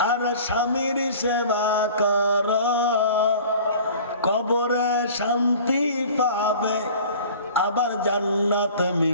আর স্বামীর সেবা করো, কবরে শান্তি পাবে, আবার জান্নাত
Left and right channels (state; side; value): inverted; both; correlation -0.44